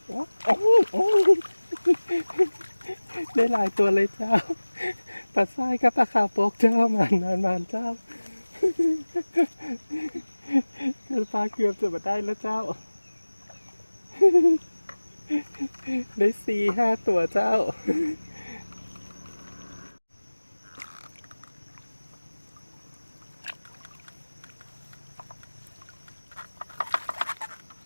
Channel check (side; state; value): both; inverted; correlation -1.00